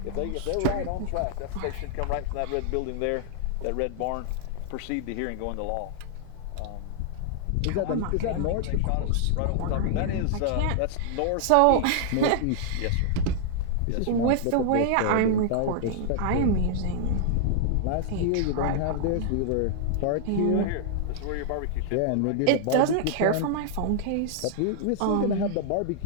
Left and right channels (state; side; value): different; both; correlation -0.01